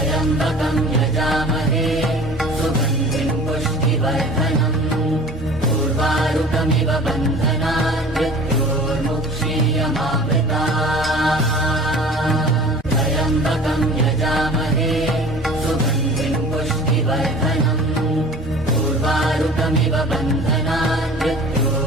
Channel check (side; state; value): both; normal; correlation 0.43